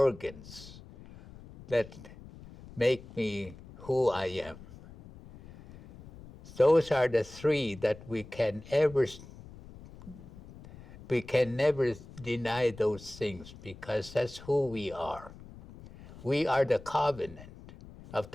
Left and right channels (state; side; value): noise; left; rumble, 18 dB below the sound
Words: that make me who I am. Those are the three that we can never deny those things because that's who we are. We are the covenant of